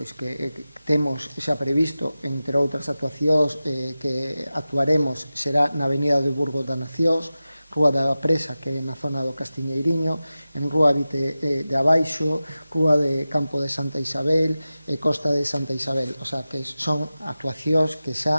que temos xa previsto, entre outras actuacións que actuaremos, será na Avenida de Burgos das Nacións, Rúa da Presa, que é na zona do Castiñeiriño, en Rúa Vite de Abaixo, Rúa de Campo de Santa Isabel e Costa de Santa Isabel. O sea, que son actuacións que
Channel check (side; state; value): both; inverted; correlation -0.95